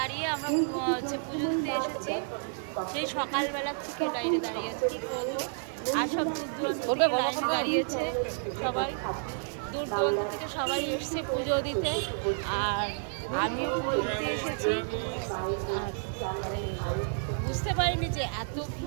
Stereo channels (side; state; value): left; silent; 56 dB below the other